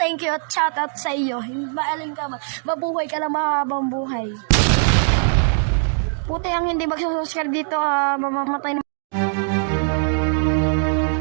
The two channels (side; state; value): left; silent; 64 dB below the other